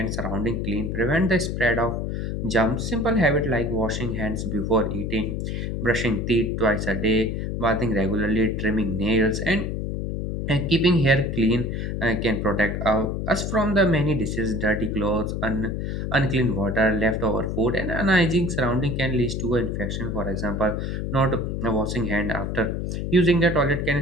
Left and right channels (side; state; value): left; noise; hum, 3 dB below the sound